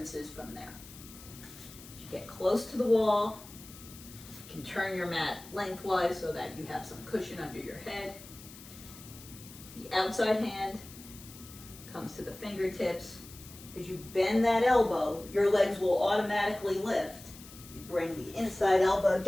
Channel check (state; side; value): noise; left; hiss, 18 dB below the sound